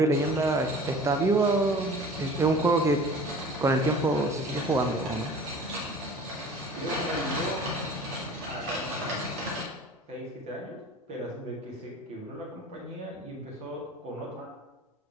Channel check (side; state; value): both; normal; correlation 0.44